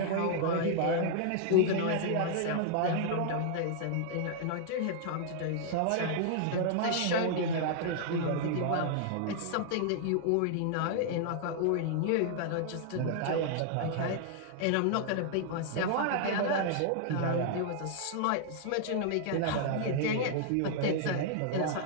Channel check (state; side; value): different; both; correlation -0.01